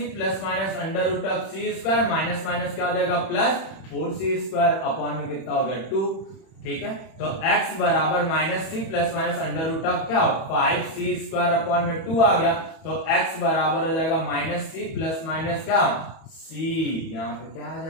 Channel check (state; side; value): late; right; 31 ms